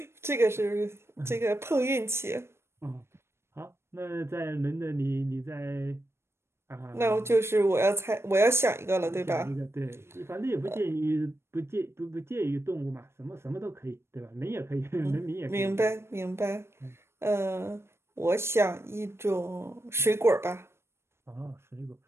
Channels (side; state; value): left; late; 0.12 ms